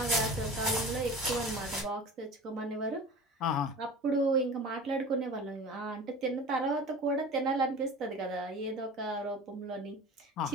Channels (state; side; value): normal; both; correlation 0.37